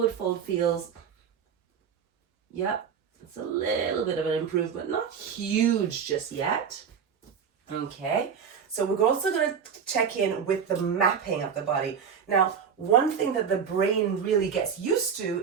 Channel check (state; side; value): quieter; left; 7.1 dB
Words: fold feels. Yep. It's a little bit of an improvement. Not huge just yet. Okay. So we're also going to check in with the mapping of the body. Now, one thing that the brain really gets used